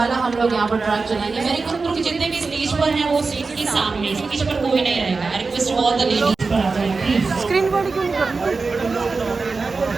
हम लोग यहाँ पर ट्रैक चलाएंगे। मेरे ग्रुप के जितने भी स्टेज पर हैं वो स्टेज के सामने, स्टेज पर कोई नहीं रहेगा। I request all the ladies पर आ जाएं प्लीज। स्क्रीन बॉडी क्यों नहीं करती?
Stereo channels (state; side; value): quieter; left; 4.2 dB